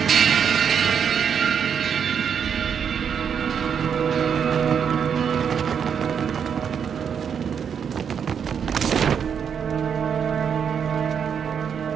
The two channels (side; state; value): left; quieter; 7.4 dB